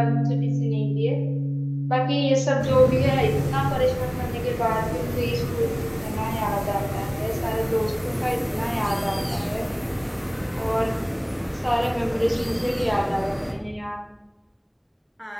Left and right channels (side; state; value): both; identical; correlation 1.00